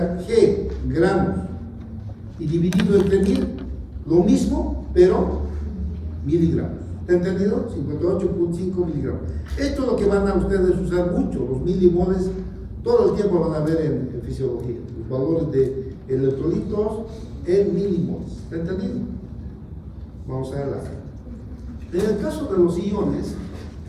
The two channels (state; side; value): identical; both; correlation 1.00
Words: g, gramos, y dividido entre 1000, lo mismo, pero miligramos. ¿Está entendido? 58.5 miligramos. Esto es lo que van a ustedes usar mucho, los milimoles, todo el tiempo van a ver en fisiología, los valores de electrolitos en milimoles. ¿Está entendido? Vamos a verla. En el caso de los iones,